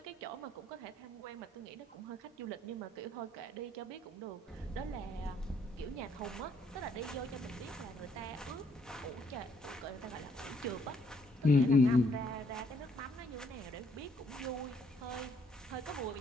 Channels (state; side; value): normal; both; correlation 0.68